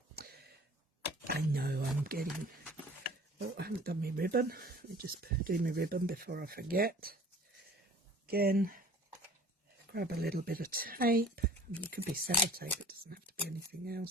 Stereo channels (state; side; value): normal; both; correlation 0.47